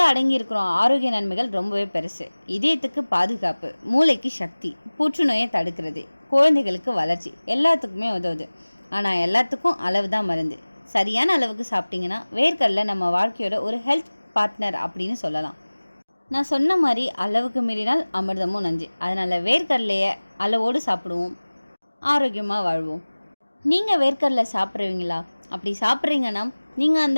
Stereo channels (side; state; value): both; inverted; correlation -1.00